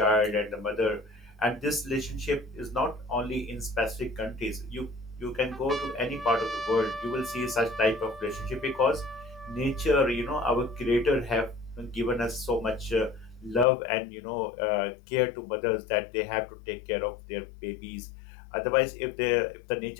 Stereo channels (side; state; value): right; drops out; at 13.7 s